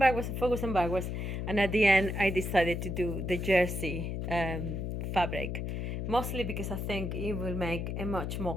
and at the end I decided to do the jersey fabric, mostly because I think it will make a much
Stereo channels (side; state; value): left; noise; hum, 3 dB below the sound